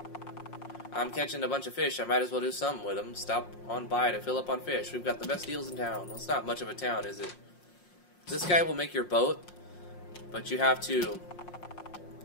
I'm catching a bunch of fish. I might as well do something with them. Stop on by to fill up on fish. We've got the best deals in town. Well, it's not much of a town, is it? This guy will make your boat, but you have to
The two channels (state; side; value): late; right; 5.6 ms